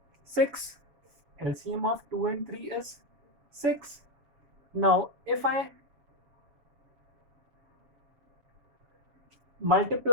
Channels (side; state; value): left; late; 7.2 ms